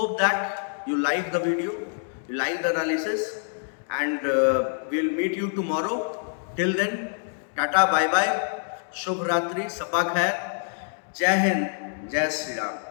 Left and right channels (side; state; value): right; silent; digital silence